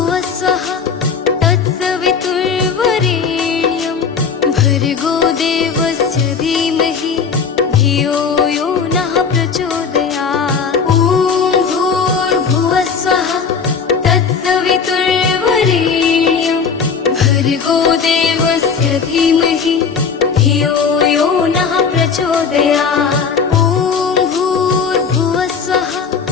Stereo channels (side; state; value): right; quieter; 5.9 dB